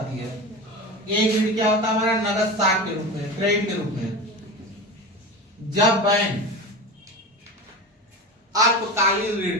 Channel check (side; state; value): both; normal; correlation 0.27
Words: है। एक ऋण क्या होता है हमारा नगद साख के रूप में, क्रेडिट के रूप में। जब बैंक अल्पकालीन ऋण